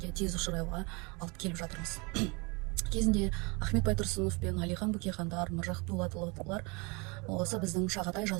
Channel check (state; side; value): quieter; left; 29.0 dB